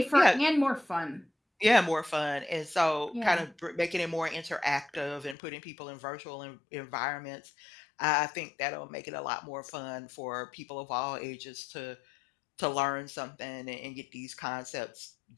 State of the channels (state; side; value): drops out; right; at 5.4 s